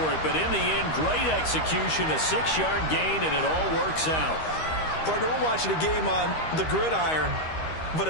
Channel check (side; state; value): right; late; 13 ms